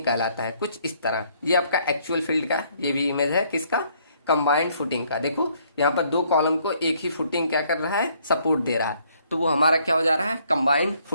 कहलाता है। कुछ इस तरह ये आपका एक्चुअल फील्ड का ये भी इमेज है, किसका, कंबाइंड फुटिंग का। देखो यहाँ पर दो कॉलम को एक ही फुटिंग क्या कर रहा है, सपोर्ट दे रहा है, तो वो हमारा क्या हो जा रहा है, कंबाइंड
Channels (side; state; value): both; inverted; correlation -0.66